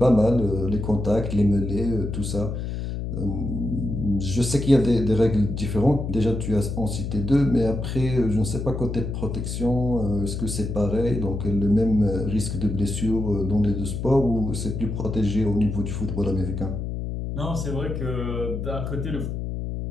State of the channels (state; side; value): noise; left; hum, 4 dB below the sound